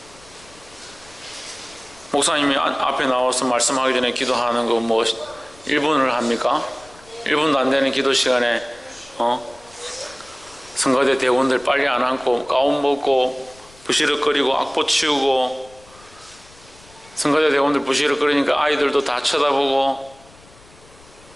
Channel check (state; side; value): noise; left; rumble, 25 dB below the sound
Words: 목사님이 앞에 나와서 말씀하기 전에 기도하는 거 뭐 1분을 합니까? 1분도 안 되는 기도 시간에 성가대 대원들 빨리 안 앉고 가운 벗고 부시럭거리고 악보 치우고, 성가대 대원들 부시럭거리니까 아이들도 다 쳐다보고,